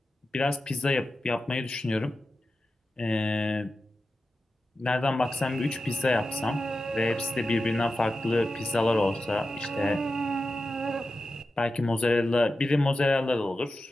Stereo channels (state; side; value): normal; both; correlation 0.92